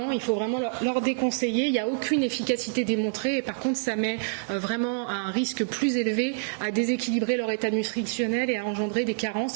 il faut vraiment leur déconseiller. Il n'y a aucune efficacité démontrée et par contre, ça met vraiment à un risque plus élevé à déséquilibrer leur état nutritionnel et à engendrer des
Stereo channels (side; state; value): left; silent; digital silence